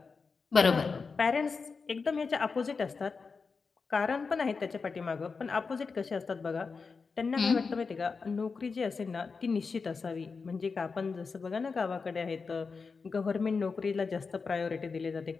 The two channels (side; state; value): right; quieter; 4.8 dB